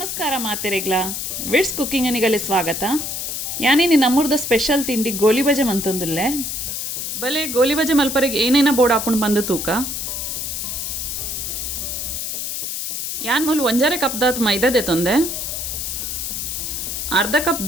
ಮಾತೆರೆಗ್ಲ widths cooking ಅನಿಗಲೆ ಸ್ವಾಗತ. ಯಾನೇನಿ ನಮ್ಮೂರ್ದ special ತಿಂಡಿ ಗೋಲಿಬಜೆ ಮಂತಂದುಲ್ಲೆ. ಬಲೆ ಗೋಲಿಬಜೆ ಮಲ್ಪರೆಗೆ ಏನೇನ ಬೋರ್ಡ್ ಹಾಕೊಂಡು ಬಂದು ತೂಕ ಯಾನ್ ಮೂಲ ಒಂಜಾರೆ ಕಪ್ದಾತ್ ಮೈದಾದೆ ತಂದೆ, ಅರ್ಧ ಕಪ್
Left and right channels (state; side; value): noise; left; hiss, 4 dB below the sound